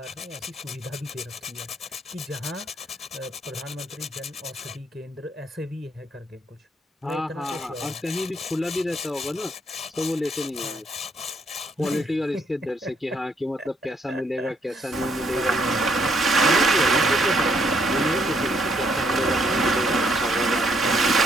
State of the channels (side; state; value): both; normal; correlation 0.71